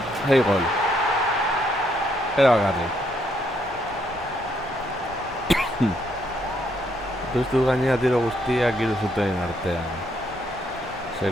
Hey, gol. Era garri. Puztu gainera tiro guztiak hiru zuten artean.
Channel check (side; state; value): both; normal; correlation 0.73